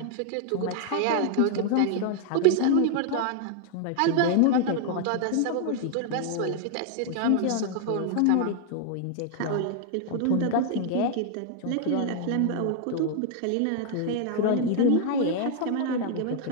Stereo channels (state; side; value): different; both; correlation 0.00